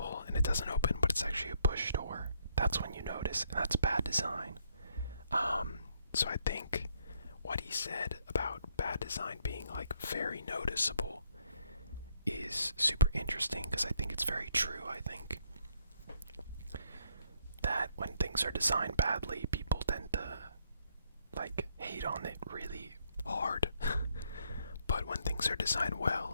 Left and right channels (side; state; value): both; inverted; correlation -0.70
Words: and it doesn't open, but it's actually a push door, that's when you notice, and that's bad design. So I think what he said about bad design being like very noticeable is super interesting, because I think it's very true. I think that when things are designed badly, people tend to like hate on it really hard. But when things are designed